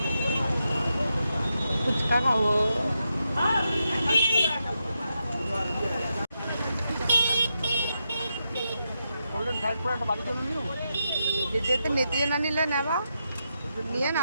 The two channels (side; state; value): both; inverted; correlation -0.85